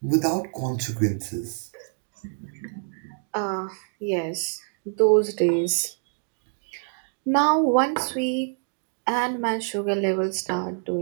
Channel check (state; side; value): silent; left; 61 dB below the other